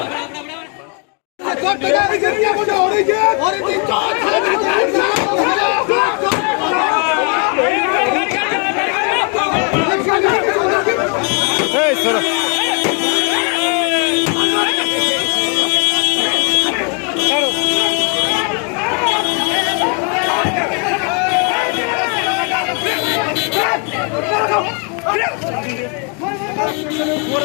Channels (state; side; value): quieter; right; 37.1 dB